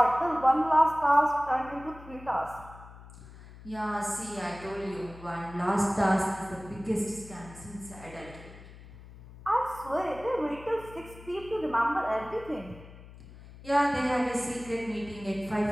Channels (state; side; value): noise; left; hum, 18 dB below the sound